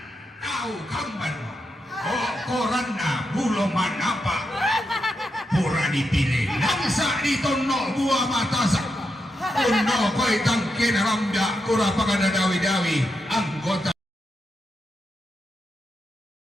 Tao kamban mo. O koran na bulong manapa. Pura dipilih. Langsa dito no buah matasak. Uno ko'y tangkin rambya. Kura pa ka na dawi-dawi. Anggota.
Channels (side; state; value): both; normal; correlation 0.85